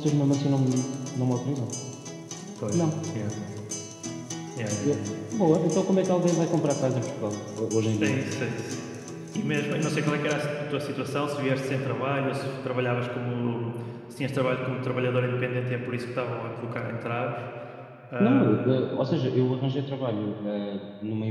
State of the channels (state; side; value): identical; both; correlation 1.00